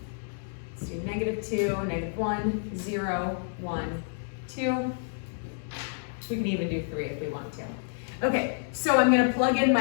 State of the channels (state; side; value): silent; right; 59 dB below the other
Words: Let's do -2, -1, 0, 1, 2. We can even do 3 if we want to. Okay, so I'm going to plug in